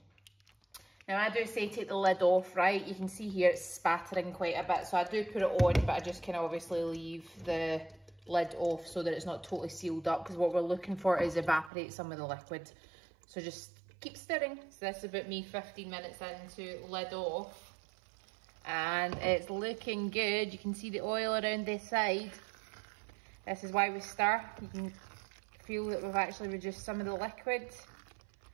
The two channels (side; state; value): left; drops out; at 11.7 s